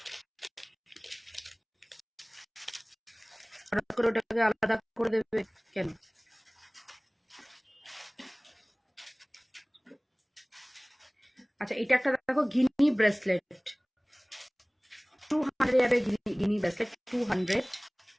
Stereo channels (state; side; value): identical; both; correlation 1.00